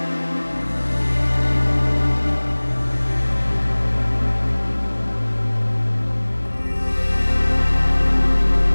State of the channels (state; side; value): inverted; both; correlation -1.00